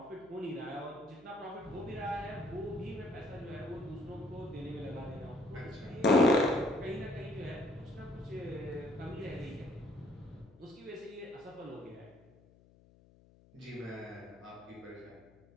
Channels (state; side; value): noise; left; hum, 26 dB below the sound